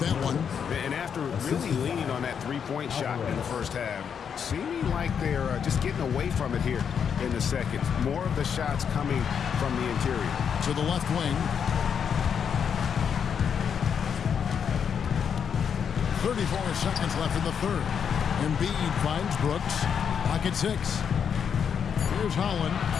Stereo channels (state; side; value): quieter; right; 7.4 dB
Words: one. And after really leaning on that three-point shot in the first half, seeming like they're just getting away from it here in the second. More of the shots coming from the interior. To the left wing. 34 seconds left in the third. Embiid finds Brooks. Pocket 6. Here's Holland,